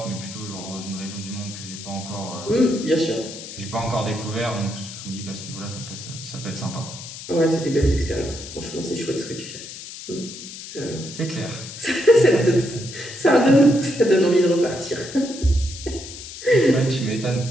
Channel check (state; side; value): noise; left; hiss, 12 dB below the sound